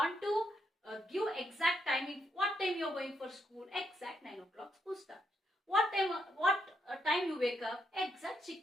to give exact timing. What time you are going for school? Exact 9 o'clock school starts. What time you wake up? Exact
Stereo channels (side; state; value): both; normal; correlation 0.78